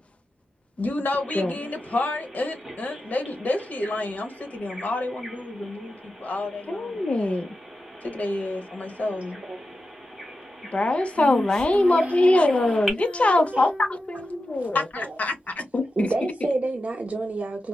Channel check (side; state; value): both; normal; correlation 0.91